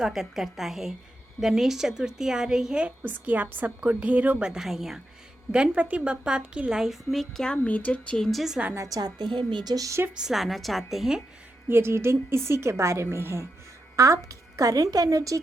करता है। गणेश चतुर्थी आ रही है, उसकी आप सबको ढेरों बधाइयाँ। गणपति बप्पा आपकी लाइफ में क्या मेजर चेंजेस लाना चाहते हैं, मेजर शिफ्ट्स लाना चाहते हैं, ये रीडिंग इसी के बारे में है। आपकी करंट एनर्जी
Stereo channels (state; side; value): normal; both; correlation 0.86